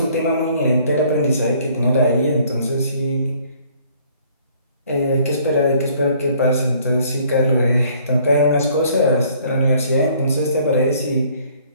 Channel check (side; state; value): both; inverted; correlation -0.60